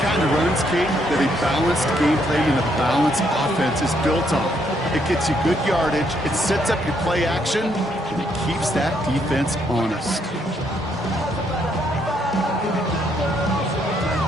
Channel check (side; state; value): both; normal; correlation 0.73